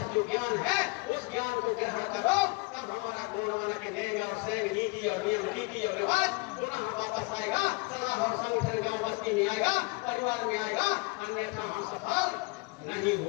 जो ज्ञान है उस ज्ञान को ग्रहण करो, तब हमारा गुणवान के देंगे और सैंग नीति और नियम रीति और रिवाज पुनः वापस आएगा, सलाह और संगठन गांव बस्ती में आएगा, परिवार में आएगा, अन्यथा हम सफल नहीं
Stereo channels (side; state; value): right; quieter; 27.0 dB